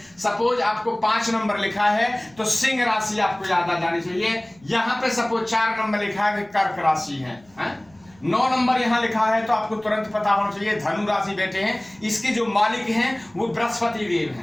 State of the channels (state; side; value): noise; right; rumble, 29 dB below the sound